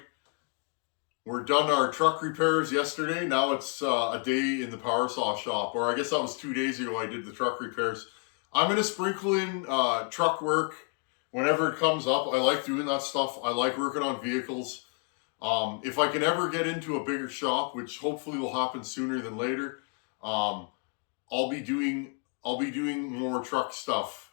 We're done our truck repairs yesterday. Now it's a day in the power saw shop, or I guess that was 2 days ago I did the truck repairs. I'm going to sprinkle in truck work whenever it comes up. I like doing that stuff. I like working on vehicles. If I can ever get into a bigger shop, which hopefully will happen sooner than later, I'll be doing more truck stuff.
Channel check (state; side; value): quieter; right; 38.2 dB